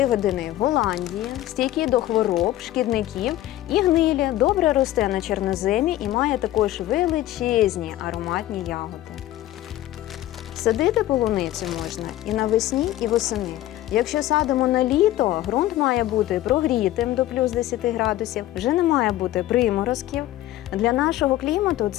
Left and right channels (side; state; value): right; quieter; 14.6 dB